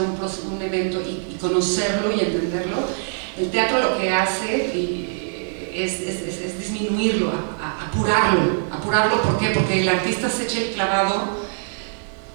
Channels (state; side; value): silent; left; digital silence